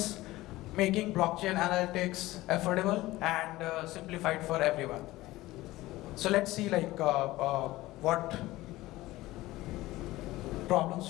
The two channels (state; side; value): quieter; right; 17.8 dB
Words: making blockchain analytics affordable and simplified for everyone. So let's see like what problems